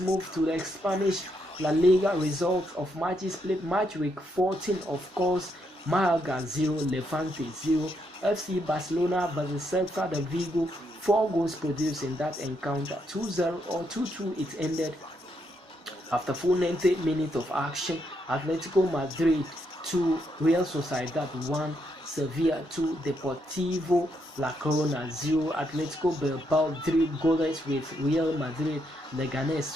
to the Spanish La Liga results of matches played. Match week 14, of course, Malaga 0, Levante 0. FC Barcelona versus Celta de Vigo, 4 goals produced in that encounter, 2-0 or 2-2 it ended. After full 90 minutes of action, Atletico Madrid 2, Real Sociedad 1, Sevilla 2, Deportivo La Corona 0, Atletico Bilbao 3 goalless with Real Madrid, Leganés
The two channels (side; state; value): both; normal; correlation 0.77